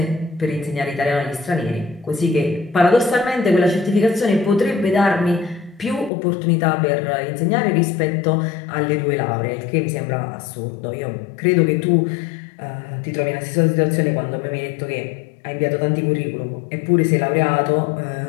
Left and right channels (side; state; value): right; drops out; at 6.1 s